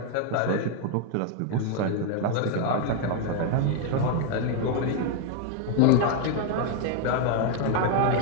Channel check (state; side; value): different; both; correlation 0.01